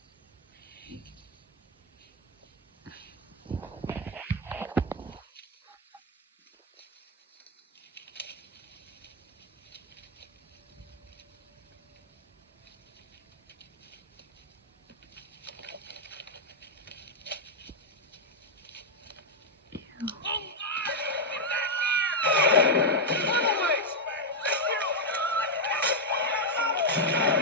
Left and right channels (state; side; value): normal; both; correlation -0.01